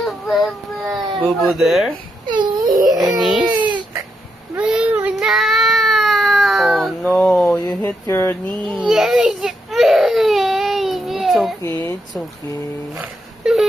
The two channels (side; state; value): both; normal; correlation 0.81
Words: Boo-boo there? Your niece? Oh no, you hit your knee. It's okay, it's okay.